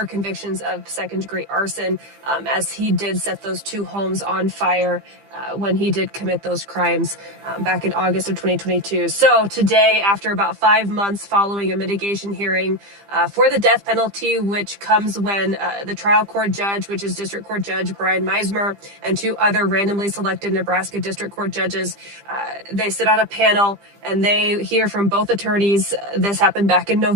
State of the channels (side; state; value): left; late; 15 ms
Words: convictions of second-degree arson, as he did set those 2 homes on fire when he did commit those crimes back in August of 2022. So today, after about 5 months following a mitigation hearing for the death penalty, which comes when the trial court judge, which is District Court Judge Brian Meismer, and 2 other randomly selected Nebraska District Court judges, they sit on a panel and they hear from both attorneys. This happened back in